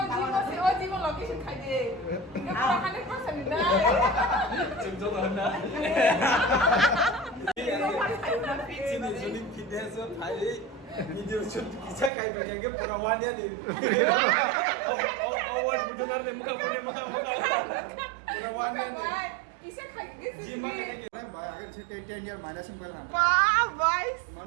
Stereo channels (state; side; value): drops out; left; at 12.1 s